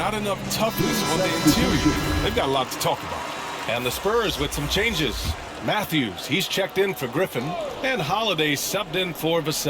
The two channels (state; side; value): identical; both; correlation 1.00